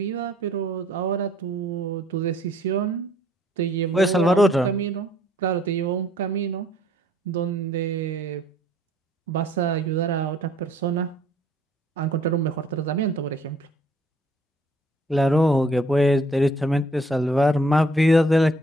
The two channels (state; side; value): normal; both; correlation 0.62